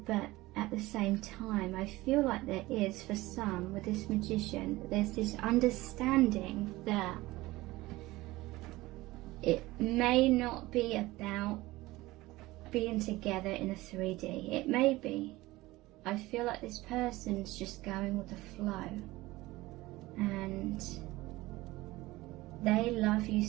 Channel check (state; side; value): quieter; left; 19.1 dB